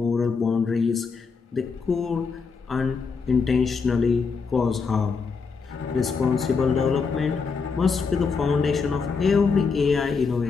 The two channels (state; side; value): quieter; right; 5.1 dB